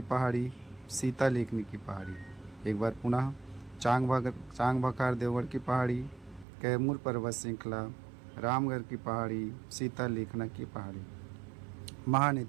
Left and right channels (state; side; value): drops out; left; at 6.5 s